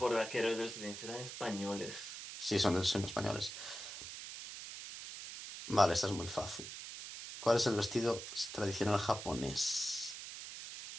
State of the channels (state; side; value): noise; right; hiss, 9 dB below the sound